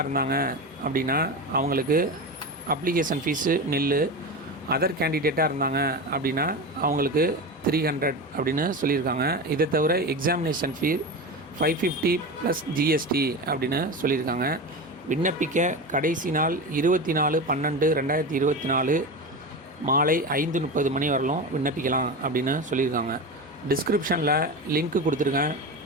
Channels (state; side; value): normal; both; correlation 0.24